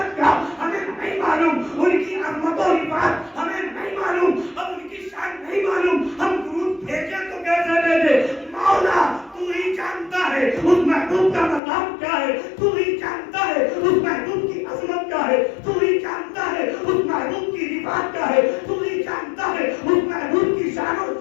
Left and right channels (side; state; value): right; drops out; at 11.6 s